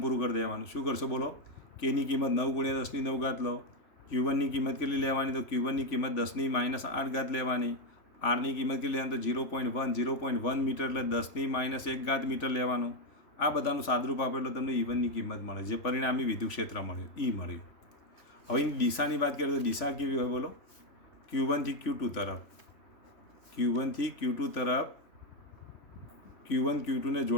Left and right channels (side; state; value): right; late; 3.4 ms